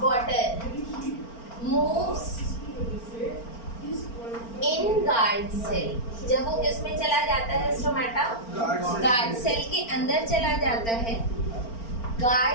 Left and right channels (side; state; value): right; late; 4.4 ms